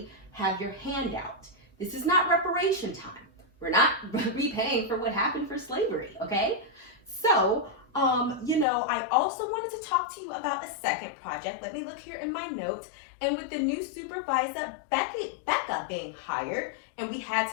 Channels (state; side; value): drops out; right; at 8.7 s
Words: have your hand out. This is not reparation time. We're not repaying for what happened for slavery, okay? So, I also wanted to talk to you about a second project. Let me look here in my notes. And with the new supervisor, Becca being hired, and we had